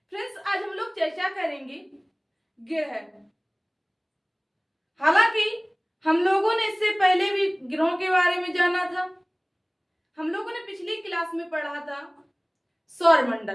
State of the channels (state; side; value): identical; both; correlation 1.00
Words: फ्रेंड्स, आज हम लोग चर्चा करेंगे ग्रह। हालांकि हम लोगों ने इससे पहले भी ग्रहों के बारे में जाना था। हम लोगों ने पिछली क्लास में पढ़ा था